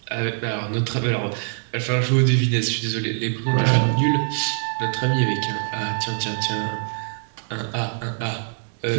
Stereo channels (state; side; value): silent; left; 63 dB below the other